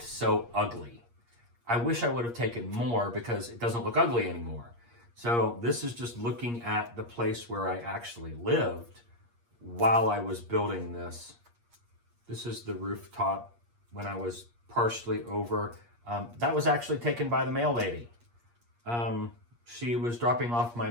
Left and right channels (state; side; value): late; left; 8.5 ms